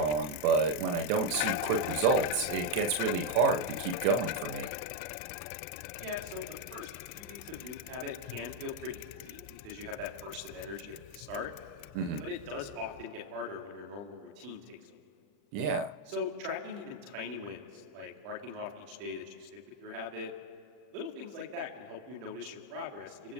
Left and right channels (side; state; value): left; late; 40 ms